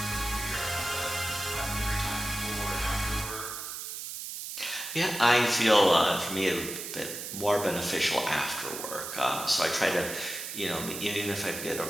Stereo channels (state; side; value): noise; right; hiss, 7 dB below the sound